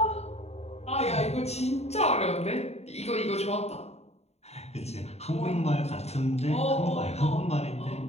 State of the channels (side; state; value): right; late; 0.31 ms